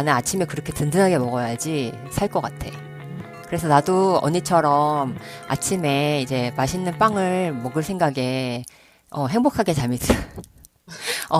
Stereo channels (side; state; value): both; identical; correlation 1.00